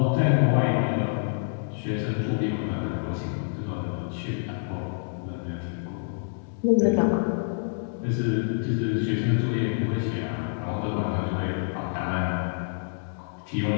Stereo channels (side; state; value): right; silent; digital silence